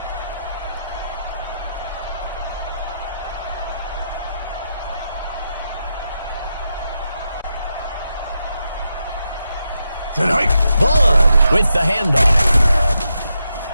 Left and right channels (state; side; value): inverted; both; correlation -0.85